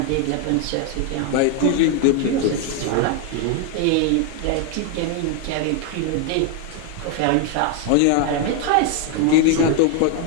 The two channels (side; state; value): both; different; correlation 0.01